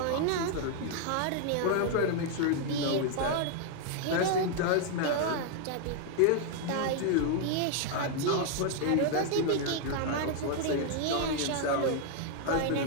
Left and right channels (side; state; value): both; different; correlation 0.00